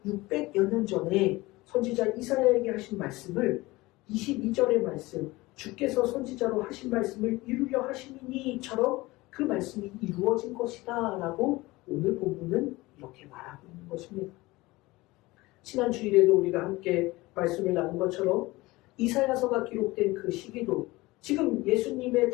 600여 년 전에 선지자 이사야에게 하신 말씀을 22절의 말씀, 주께서 선지자로 하신 말씀을 이루려 하심이니처럼 그 말씀이 이루어진 것이다 라고 오늘 본문은 이렇게 말하고 있는 것입니다. 지난 주일에도 우리가 함께 말씀을 나눈 것처럼 이사야서가 기록된 그 시기도 지금 예수님의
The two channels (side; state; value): right; quieter; 20.7 dB